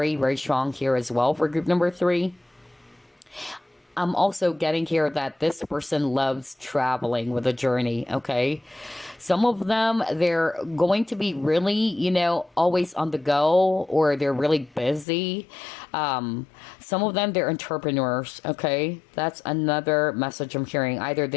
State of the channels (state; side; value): drops out; right; at 15.1 s